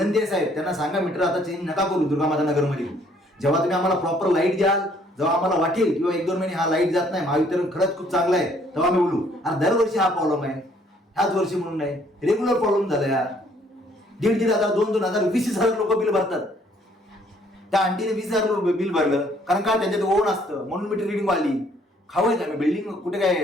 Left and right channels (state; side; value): normal; both; correlation 0.63